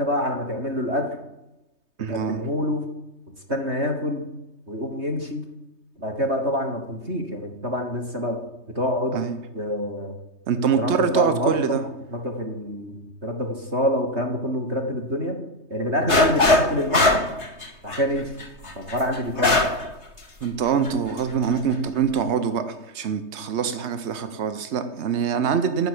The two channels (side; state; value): left; late; 3.2 ms